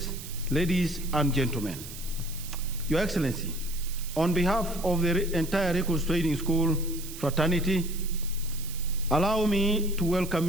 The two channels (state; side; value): noise; right; hiss, 13 dB below the sound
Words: ladies and gentlemen. Your Excellency, on behalf of the entire Recruits Training School fraternity, allow me to welcome